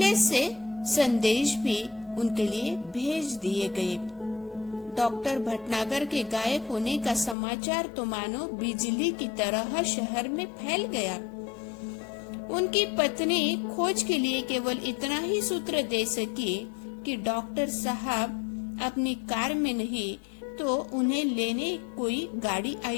से संदेश भी उनके लिए भेज दिए गए। डॉक्टर भटनागर के गायब होने का समाचार तो मानो बिजली की तरह शहर में फैल गया। उनकी पत्नी खोज के लिए केवल इतना ही सूत्र दे सकी कि डॉक्टर साहब अपनी कार में नहीं तो उन्हें लेने कोई गाड़ी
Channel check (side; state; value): right; drops out; at 7.4 s